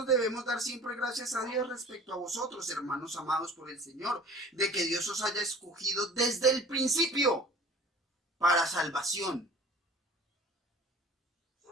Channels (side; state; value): both; normal; correlation 0.45